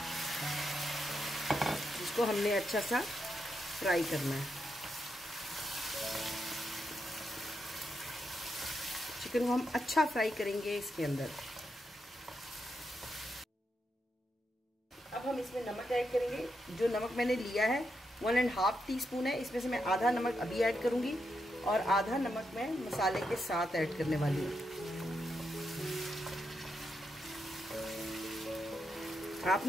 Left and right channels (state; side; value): normal; both; correlation 0.83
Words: जिसको हमने अच्छा सा फ्राई करना है। चिकन को हम अच्छा फ्राई करेंगे इसके अंदर। अब हम इसमें नमक ऐड करेंगे। जो नमक मैंने लिया है 1.5 टीस्पून है, इसमें से मैं आधा नमक अभी ऐड करूंगी और आधा नमक मैं मसाले के साथ ऐड करने वाली हूँ।